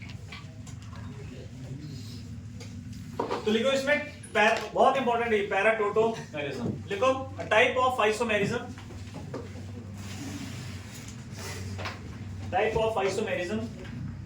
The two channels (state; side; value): identical; both; correlation 1.00